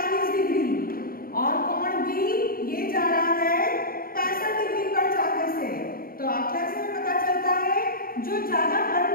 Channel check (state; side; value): late; right; 0.42 ms